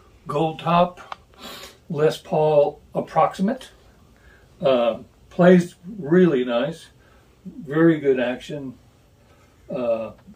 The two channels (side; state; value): both; identical; correlation 1.00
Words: gold top Les Paul approximate. Plays really nice, very good action. Trying